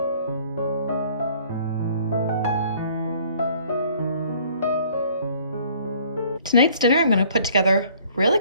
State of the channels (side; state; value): both; inverted; correlation -0.57